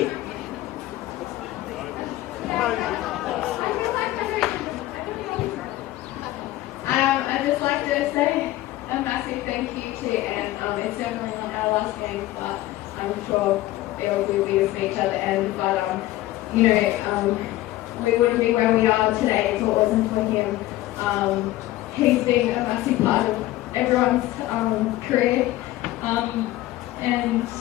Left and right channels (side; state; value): right; quieter; 16.2 dB